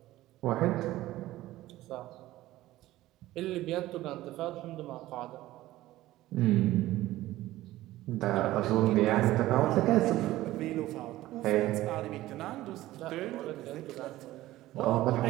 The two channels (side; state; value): left; quieter; 16.0 dB